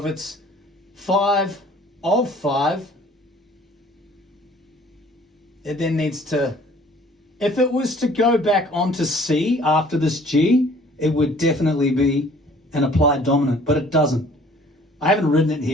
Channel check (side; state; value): both; normal; correlation 0.54